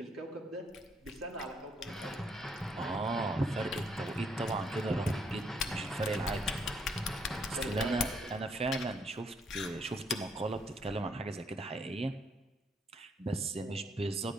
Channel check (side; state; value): both; normal; correlation 0.71